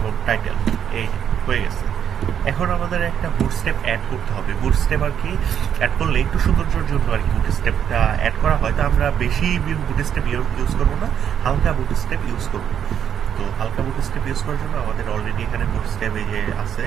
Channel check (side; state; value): left; quieter; 8.8 dB